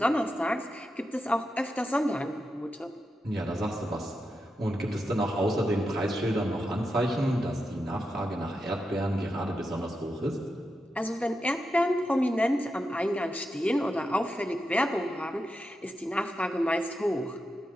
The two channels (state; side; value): normal; both; correlation 0.87